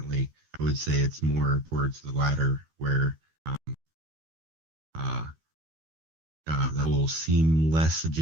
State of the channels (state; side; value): late; left; 13 ms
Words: I would say it's more towards the latter, where uh, the whole seem less